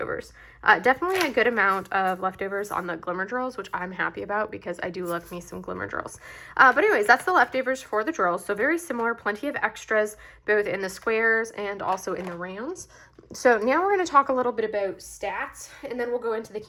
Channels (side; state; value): both; identical; correlation 1.00